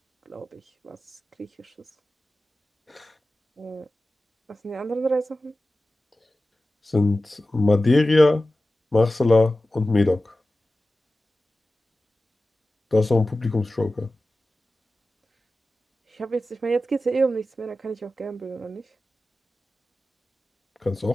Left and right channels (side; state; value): both; normal; correlation 0.95